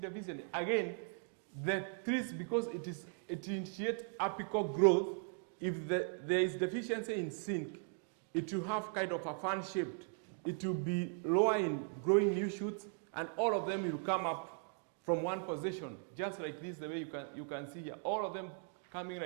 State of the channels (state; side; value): silent; left; 52 dB below the other